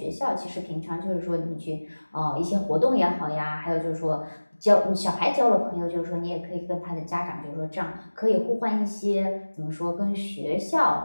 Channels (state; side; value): inverted; both; correlation -1.00